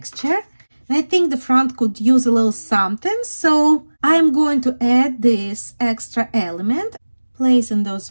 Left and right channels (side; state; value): both; inverted; correlation -1.00